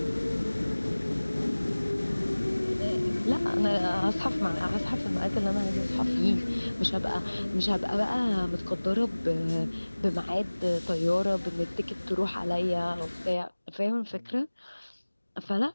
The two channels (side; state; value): both; inverted; correlation -1.00